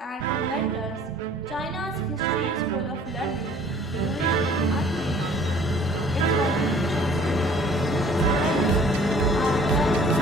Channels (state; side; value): normal; both; correlation 0.53